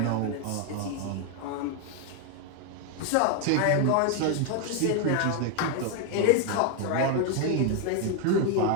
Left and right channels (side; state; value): both; different; correlation 0.00